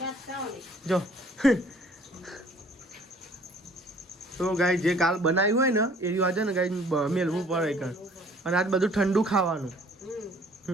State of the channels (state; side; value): normal; both; correlation 0.56